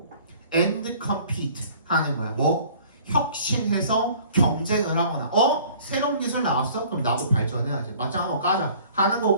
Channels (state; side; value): inverted; both; correlation -0.52